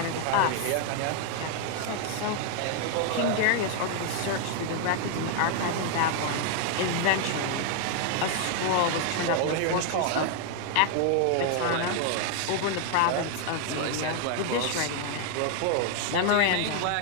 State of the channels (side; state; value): both; different; correlation 0.00